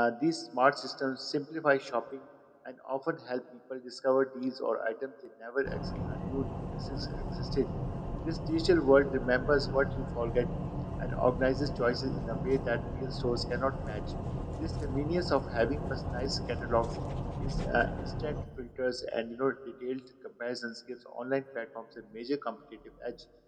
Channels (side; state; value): both; identical; correlation 1.00